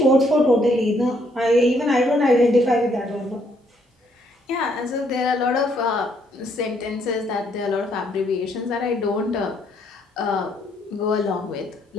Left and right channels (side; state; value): both; normal; correlation 0.70